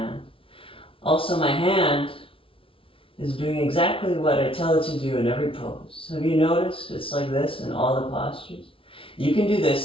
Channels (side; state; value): right; late; 0.26 ms